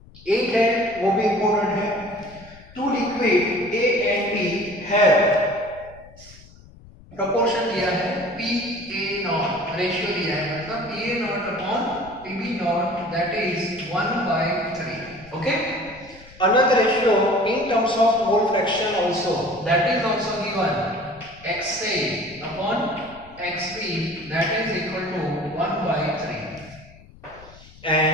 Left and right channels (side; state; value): left; noise; rumble, 22 dB below the sound